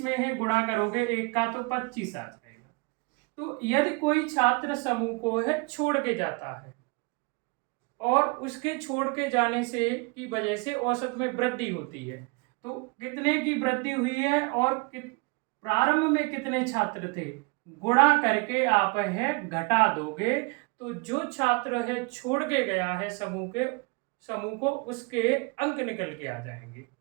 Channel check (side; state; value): left; quieter; 29.5 dB